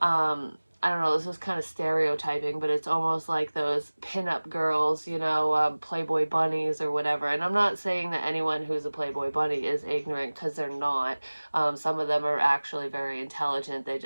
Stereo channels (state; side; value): inverted; both; correlation -1.00